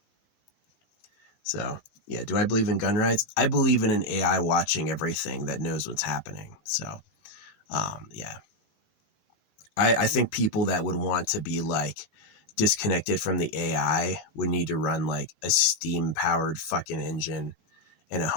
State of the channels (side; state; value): right; late; 19 ms